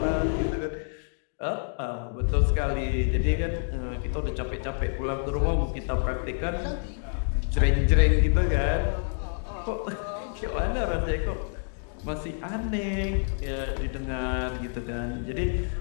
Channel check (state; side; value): silent; right; digital silence